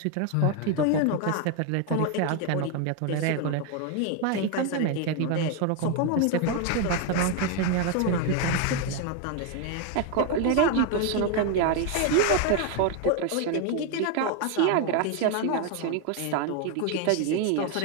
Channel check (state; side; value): different; both; correlation 0.01